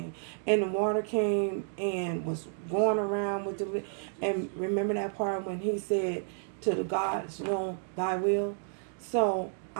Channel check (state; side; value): silent; left; digital silence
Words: And the water came and was going around with the. And remember that part when he said, to the gods, thy will. So